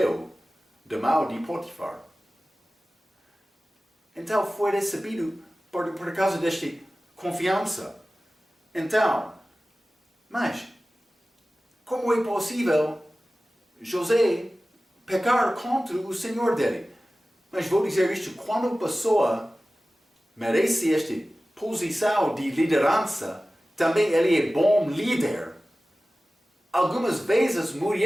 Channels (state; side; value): normal; both; correlation 0.96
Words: da mão de Potifar. Então foi recebido por causa desta confiança. Então, mas, como é possível José pecar contra o Senhor dele? Mas vou dizer isto: quando a pessoa merece esta posição de liderança, também ele é bom líder. Algumas vezes a